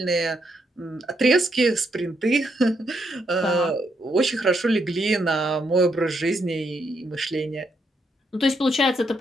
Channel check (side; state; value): both; normal; correlation 0.77